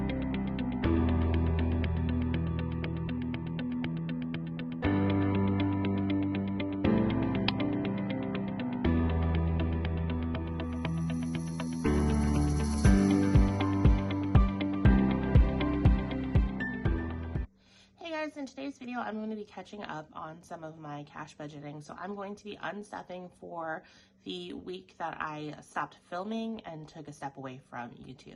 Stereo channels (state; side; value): identical; both; correlation 1.00